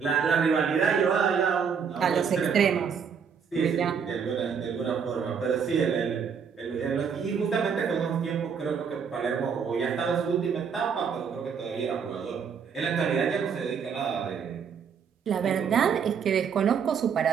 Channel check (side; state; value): left; quieter; 6.7 dB